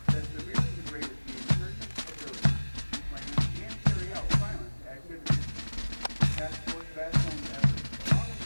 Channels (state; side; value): inverted; both; correlation -1.00